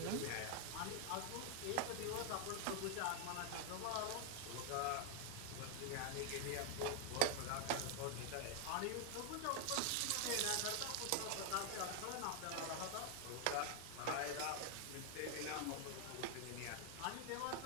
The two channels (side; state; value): both; different; correlation 0.00